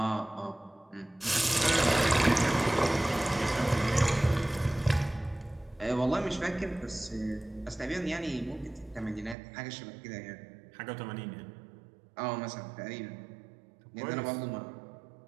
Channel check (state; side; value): drops out; left; at 9.3 s